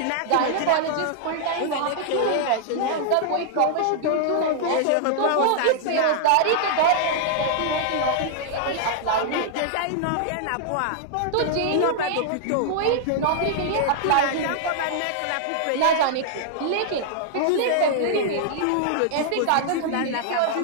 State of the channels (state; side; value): different; both; correlation -0.01